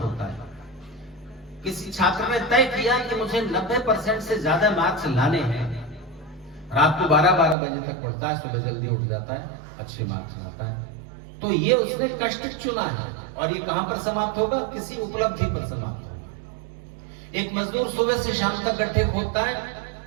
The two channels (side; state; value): left; drops out; at 7.6 s